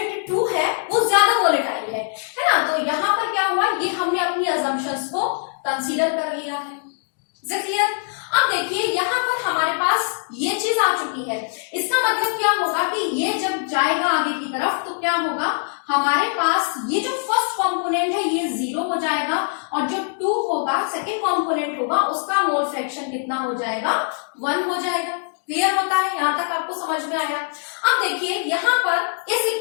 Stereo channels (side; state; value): right; silent; digital silence